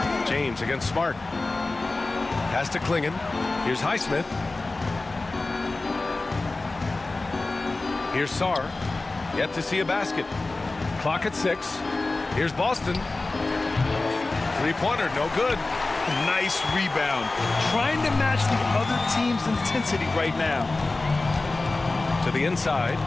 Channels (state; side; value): quieter; right; 3.3 dB